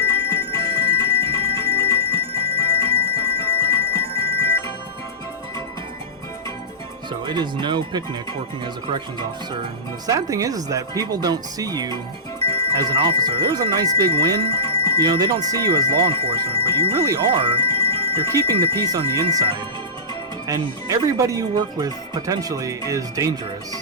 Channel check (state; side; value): normal; both; correlation -0.17